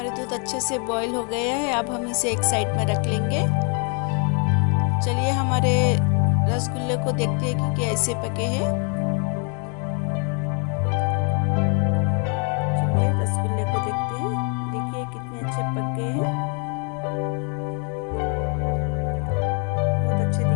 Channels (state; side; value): quieter; right; 37.6 dB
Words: दूध अच्छे से बॉईल हो गया है। अब हम इसे एक साइड में रख लेंगे। चलिए हमारे रसगुल्ले को देखते हैं कि कैसे पके हैं। चलिए रसगुल्ले को देखते हैं। देखिए कितने अच्छे पक गए हैं, बहुत अच्छे